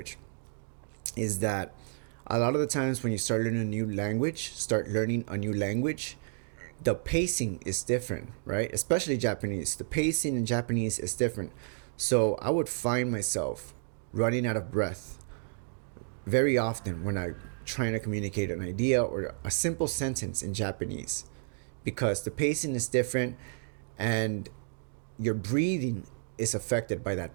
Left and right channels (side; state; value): left; silent; digital silence